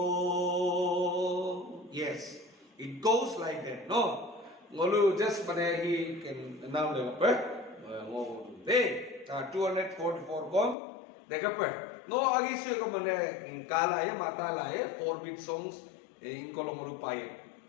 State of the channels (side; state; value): right; drops out; at 10.8 s